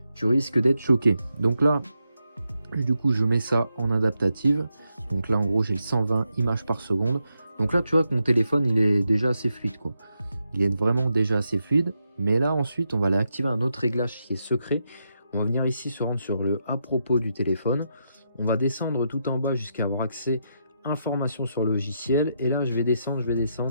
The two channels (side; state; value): both; inverted; correlation -0.83